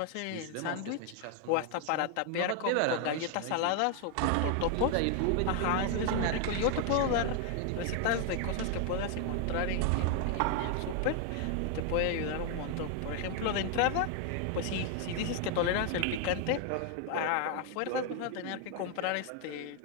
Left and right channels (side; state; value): both; different; correlation 0.00